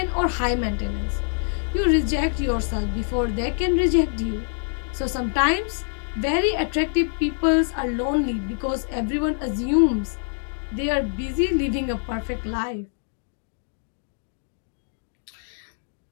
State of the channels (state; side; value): silent; right; digital silence